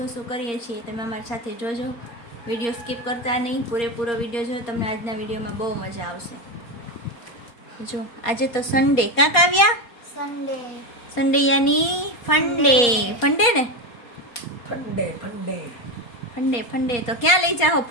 શું શું કરીએ છીએ તમે અમારી સાથે જોજો. વિડીયો સ્કીપ કરતા નહીં, પૂરેપૂરો વિડીયો જો, તમને આજના વિડીયોમાં બહુ મજા આવશે. જો આજે તો સન્ડે, કાં કાવ્યા? સન્ડે. સન્ડે યાની ફંડે. ફંડે ને? Funday funday funday funday. તો ક્યાં લઈ જાઓ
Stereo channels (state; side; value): late; right; 4.2 ms